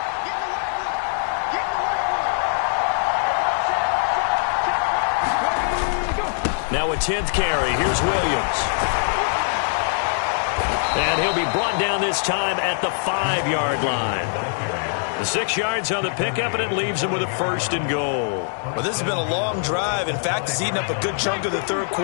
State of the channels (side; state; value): right; silent; digital silence